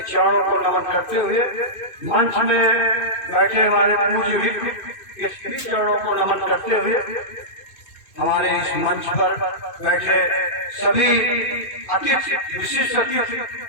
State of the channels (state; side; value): late; right; 2.5 ms